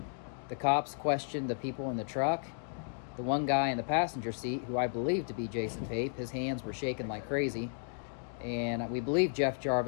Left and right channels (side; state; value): right; silent; digital silence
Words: The cops questioned the people in the truck. The one guy in the passenger seat, who I believe to be Jason Pape, his hands were shaking like crazy, and we believe Jeff